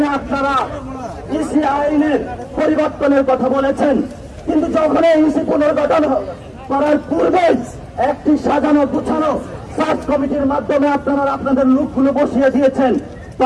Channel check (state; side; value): identical; both; correlation 1.00